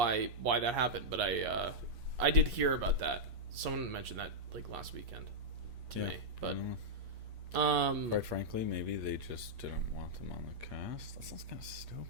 that happened, but I did hear about that. Someone mentioned that like last weekend to me, but quite frankly, maybe they just didn't want them on the cast. That sounds kind of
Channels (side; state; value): left; late; 8.4 ms